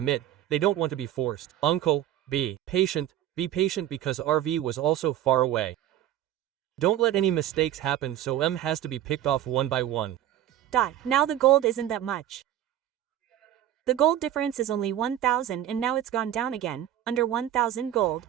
They don't want to be forced. Uncle, be patient because RV was also far away. Don't let any mistakes happen so M has to be picked off one by one. Now the gold isn't that much. The gold difference is only 1,000 and now it's gone down again, under 1,000 gold.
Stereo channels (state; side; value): quieter; left; 11.9 dB